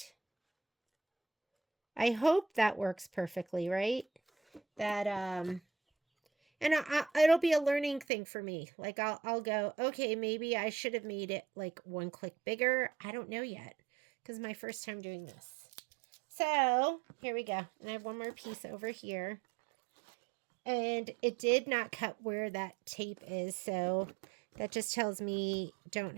I hope that works perfectly, right? That, and it'll be a learning thing for me. Like, I'll go, okay, maybe I should have made it like one click bigger. I don't know yet, because my first time doing this. So, here we go. And I have one more piece over here. And it did not cut where that tape is, so that just tells me don't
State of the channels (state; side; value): drops out; left; at 8.1 s